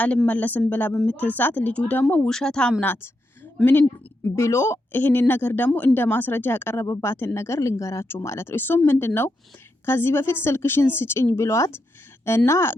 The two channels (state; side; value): normal; both; correlation 0.84